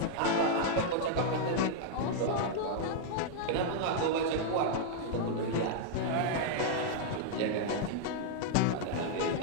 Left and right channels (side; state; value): both; different; correlation -0.01